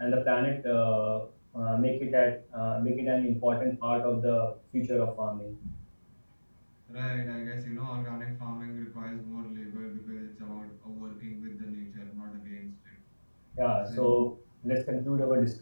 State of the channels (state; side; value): inverted; both; correlation -1.00